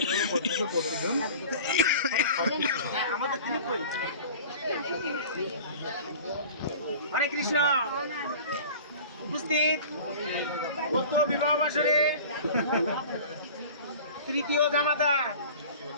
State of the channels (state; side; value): inverted; both; correlation -0.41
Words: পদ্ধতি করতেছেন। আমাদের তিনি কই? হরে কৃষ্ণ। উপস্থিত পদ্ম বিবাহ বাসরে তৃতীয় জামাতা